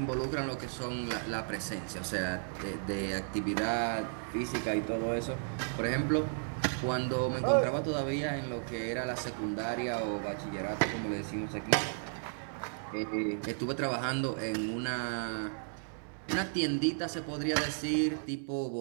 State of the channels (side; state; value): left; silent; digital silence